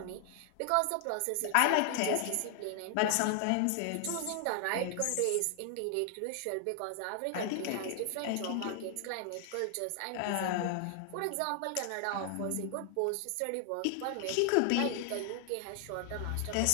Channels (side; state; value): both; different; correlation 0.00